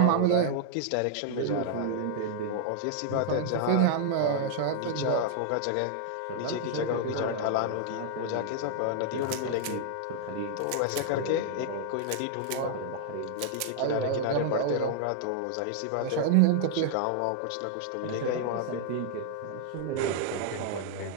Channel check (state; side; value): different; both; correlation -0.01